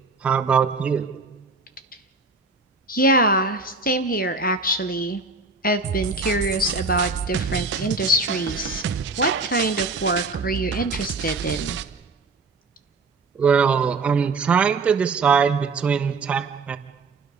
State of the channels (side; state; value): left; quieter; 3.7 dB